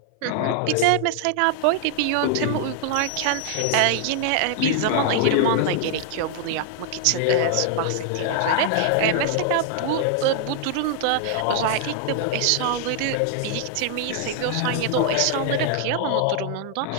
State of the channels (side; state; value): both; different; correlation 0.00